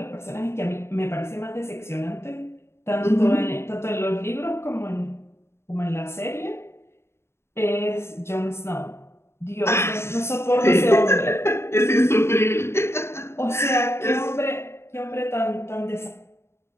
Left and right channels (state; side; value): late; right; 0.12 ms